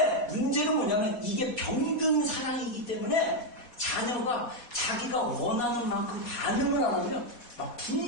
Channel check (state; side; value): late; right; 4.1 ms